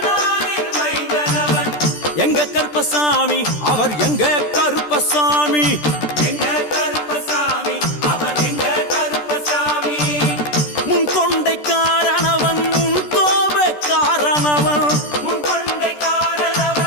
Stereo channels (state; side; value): late; right; 13 ms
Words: மைந்தனவன். எங்க கருப்பசாமி அவர் எங்க கருப்பசாமி. எங்க கருப்பசாமி அவர் எங்க கருப்பசாமி. முன்கொண்டை காரணவன் முன்கோப காரணவன். முன்கொண்டை